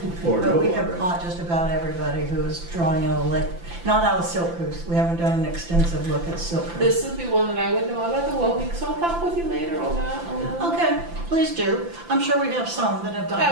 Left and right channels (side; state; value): left; late; 5.9 ms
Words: But we have caught just about everybody who is drawing out a lake, not out of Silk Goose. We haven't done an extensive look at Silk Goose. This would be one that I would know about the well week, so I'll talk with you later on that. Okay, please do. I'm sure we have some that have